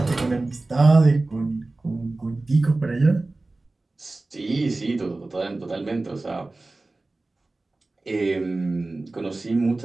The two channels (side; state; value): left; quieter; 3.1 dB